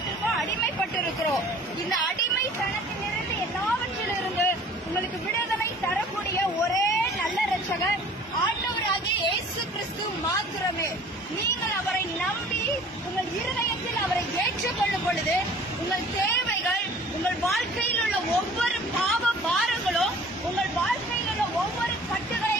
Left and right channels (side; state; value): both; normal; correlation 0.49